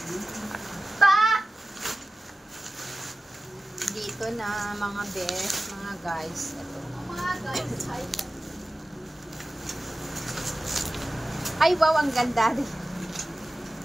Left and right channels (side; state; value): both; normal; correlation 0.96